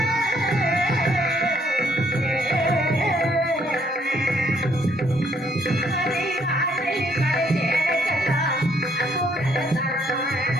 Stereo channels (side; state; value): both; normal; correlation 0.68